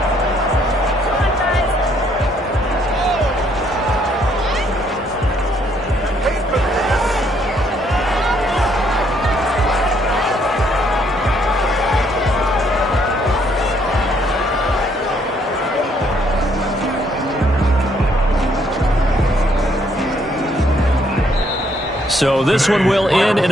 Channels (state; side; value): normal; both; correlation 0.68